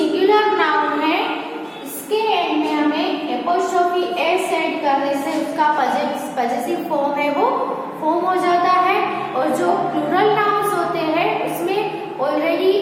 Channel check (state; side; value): identical; both; correlation 1.00